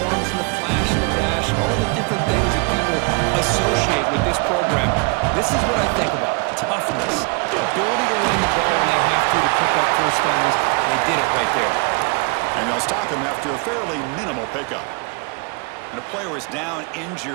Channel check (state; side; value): quieter; left; 31.4 dB